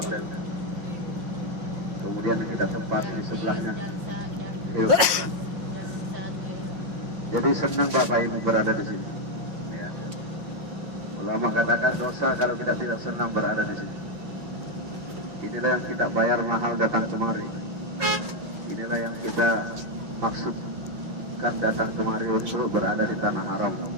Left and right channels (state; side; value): late; left; 5.6 ms